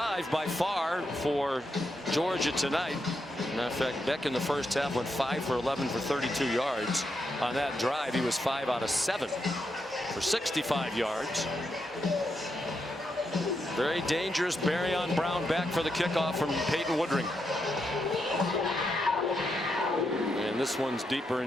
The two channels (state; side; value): normal; both; correlation 0.83